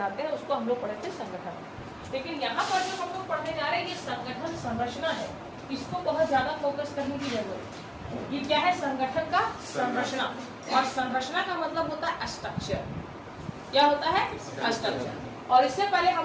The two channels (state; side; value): identical; both; correlation 1.00